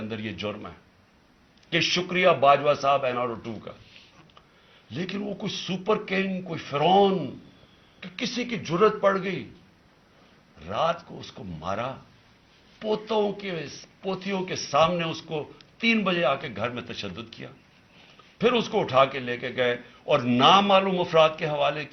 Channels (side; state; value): both; identical; correlation 1.00